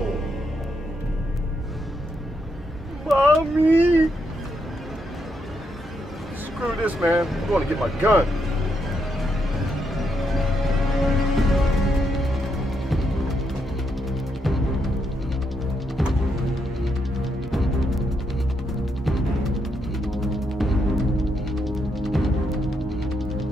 Mommy! Screw this, man. I'm going to get my gun.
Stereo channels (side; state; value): both; normal; correlation 0.79